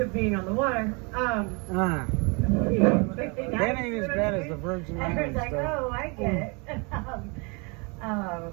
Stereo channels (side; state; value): left; quieter; 31.3 dB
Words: being on the water. That ain't as bad as the Virgin Islands. I was like, oh, I get it.